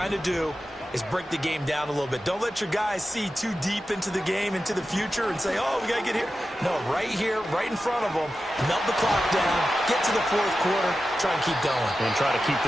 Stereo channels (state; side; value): normal; both; correlation 0.92